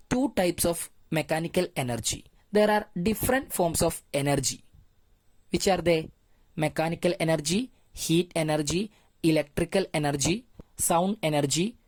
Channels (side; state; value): both; identical; correlation 1.00